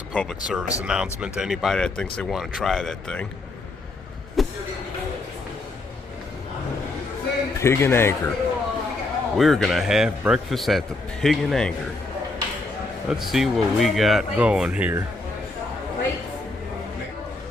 a public service announcement to anybody that thinks they want to try that thing. Pig and Anchor. We're gonna have breakfast at the Pig and Anchor. Let's see what we got going here.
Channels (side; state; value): right; quieter; 3.0 dB